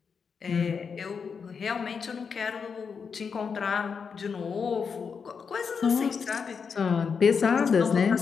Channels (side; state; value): right; quieter; 5.9 dB